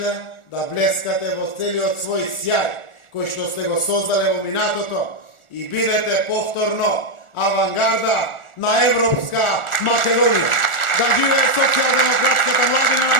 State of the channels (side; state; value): right; late; 1.4 ms